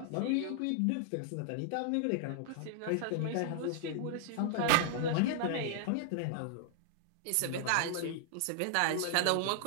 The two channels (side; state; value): both; different; correlation 0.00